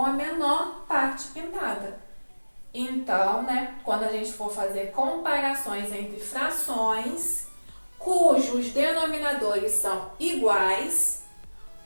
a menor parte pintada. Então, né, quando a gente for fazer comparações entre frações cujos denominadores são iguais,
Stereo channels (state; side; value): inverted; both; correlation -1.00